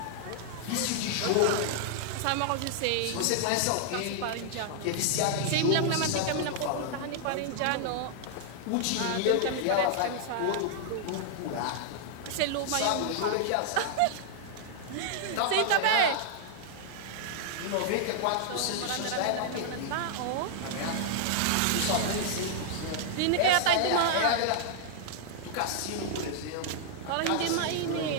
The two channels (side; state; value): both; different; correlation -0.01